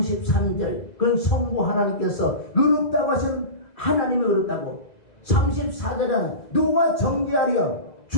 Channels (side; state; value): right; late; 2.0 ms